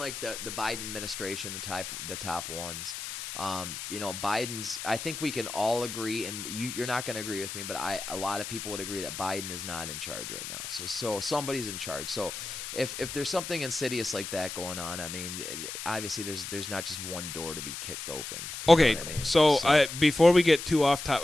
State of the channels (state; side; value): noise; left; hiss, 7 dB below the sound